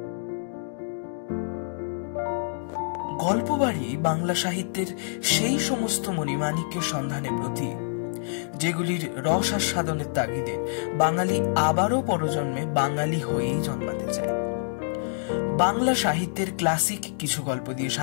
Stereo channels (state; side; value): silent; right; digital silence